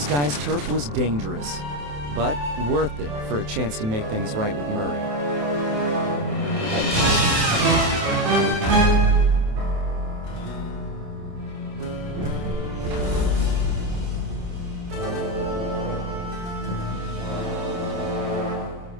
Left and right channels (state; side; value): late; left; 27 ms